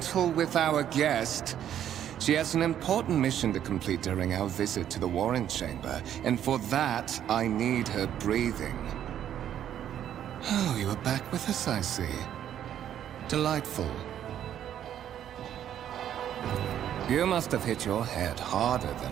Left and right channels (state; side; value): quieter; left; 10.4 dB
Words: with our guest. She has an important mission to complete during our visit to the Warren Chamber, and for that, I need her breathing. Oh, you are back with us, I see. Delightful. You must have hit your head harder than